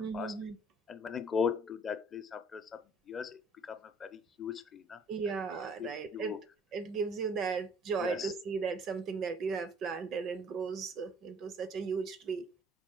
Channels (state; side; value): normal; both; correlation 0.58